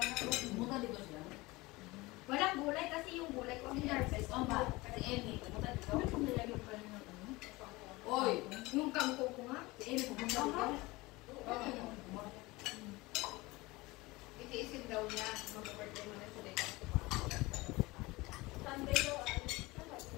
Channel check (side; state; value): right; quieter; 21.8 dB